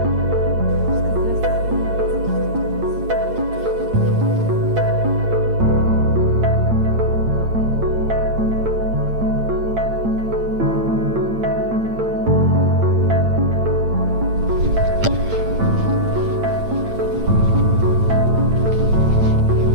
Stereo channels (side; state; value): left; late; 8.8 ms